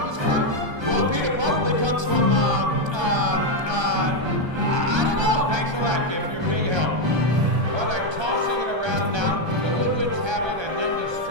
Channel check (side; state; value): left; late; 1.3 ms